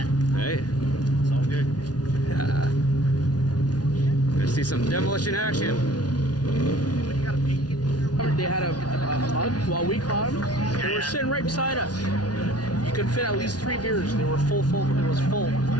Hey. It's all good. Yeah. Gonna see some demolition action. They had a mug while we caught them. They were sitting right beside us. You could fit at least 3 beers. They were full. It was full.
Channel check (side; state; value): right; late; 0.69 ms